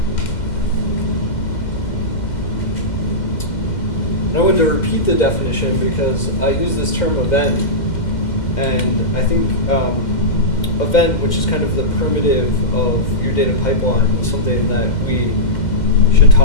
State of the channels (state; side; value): late; right; 2.1 ms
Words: And I wanted to repeat the definition because I use this term event, and I think event, which is kind of the primitive of your data pipeline, is something that we should